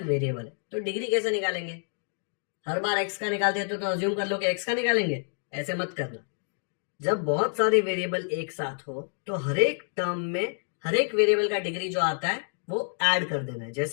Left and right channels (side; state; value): right; silent; digital silence